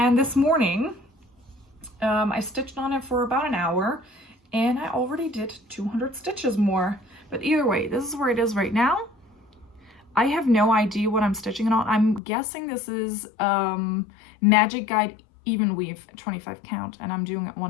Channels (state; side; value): drops out; right; at 12.2 s